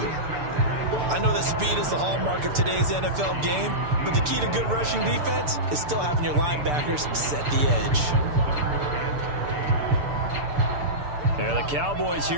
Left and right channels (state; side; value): late; left; 6.8 ms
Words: I know that speed is the hallmark of today's NFL game, but the key to good rushing defense is still having your linebackers set the edge. And the Cowboys